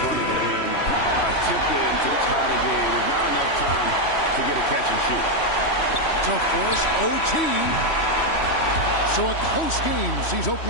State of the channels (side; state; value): right; late; 3.1 ms